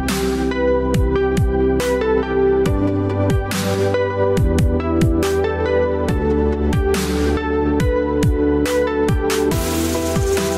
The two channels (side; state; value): both; identical; correlation 1.00